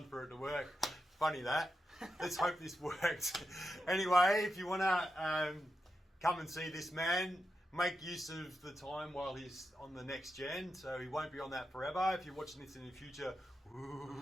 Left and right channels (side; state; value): both; normal; correlation 0.87